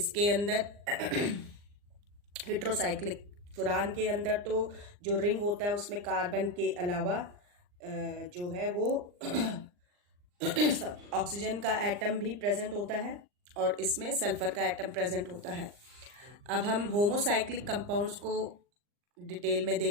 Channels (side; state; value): left; late; 39 ms